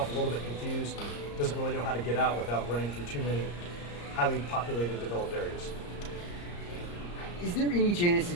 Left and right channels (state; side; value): late; right; 34 ms